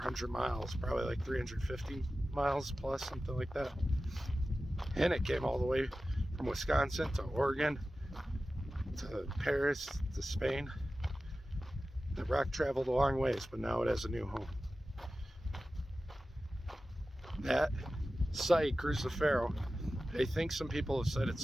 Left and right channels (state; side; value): normal; both; correlation 0.95